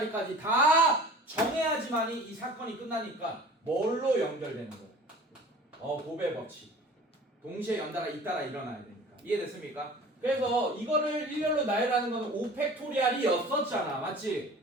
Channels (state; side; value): normal; both; correlation 0.43